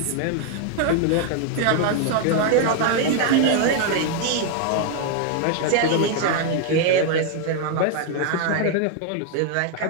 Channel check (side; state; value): both; different; correlation 0.00